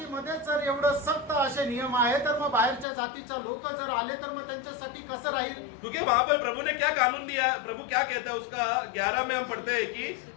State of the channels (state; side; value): drops out; right; at 2.9 s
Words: जर एवढं सक्त असे नियम आहे तर मग बाहेरच्या जातीच्या लोक जर आले तर मग त्यांच्यासाठी कसं राहील? क्योंकि वहां पर प्रभु ने क्या कानून दिया? प्रभु क्या कहता है उसका 11 में हम पढ़ते हैं कि